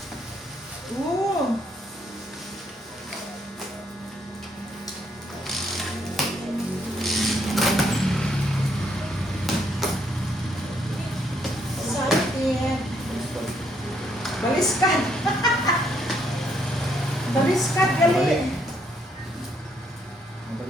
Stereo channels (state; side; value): normal; both; correlation 0.72